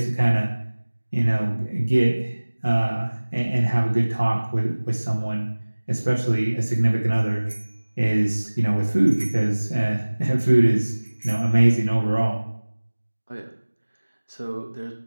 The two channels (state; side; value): inverted; both; correlation -1.00